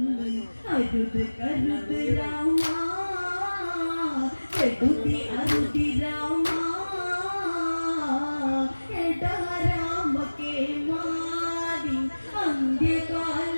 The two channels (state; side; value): inverted; both; correlation -1.00